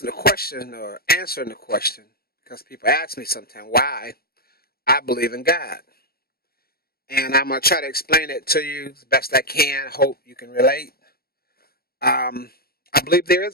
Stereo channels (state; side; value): late; right; 0.44 ms